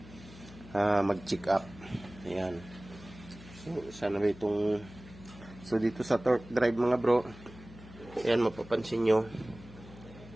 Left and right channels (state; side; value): noise; left; hum, 18 dB below the sound